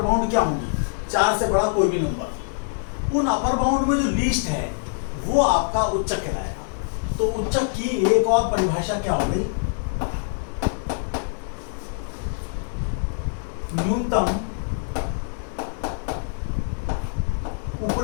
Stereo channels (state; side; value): silent; right; digital silence